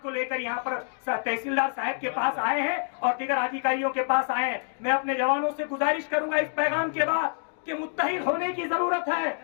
को लेकर यहाँ पर तहसीलदार साहब के पास आए हैं और दीगर अधिकारियों के पास आए हैं। मैं अपने जवानों से गुजारिश करूंगा इस पैगाम के बाद कि मुत्तहिद होने की जरूरत है।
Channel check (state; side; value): silent; right; digital silence